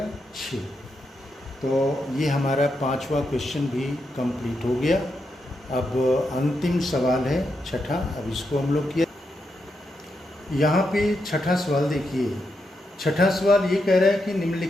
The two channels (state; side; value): normal; both; correlation 0.84